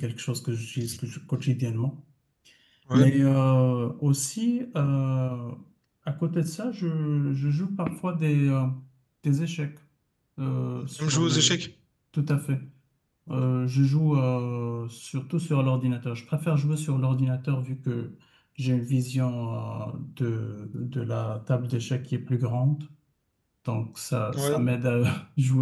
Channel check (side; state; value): both; identical; correlation 1.00